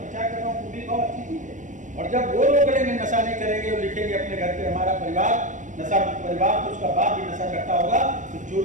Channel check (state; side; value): late; left; 0.37 ms